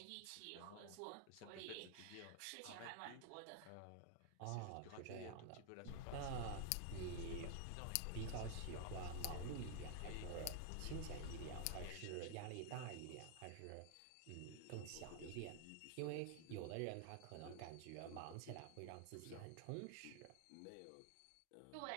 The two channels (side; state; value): both; different; correlation 0.00